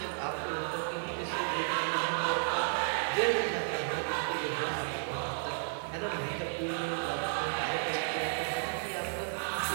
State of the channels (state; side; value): silent; left; digital silence